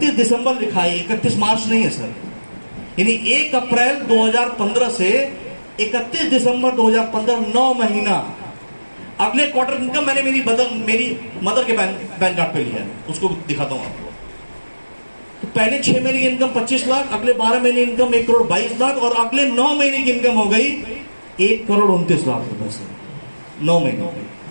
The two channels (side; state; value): both; inverted; correlation -1.00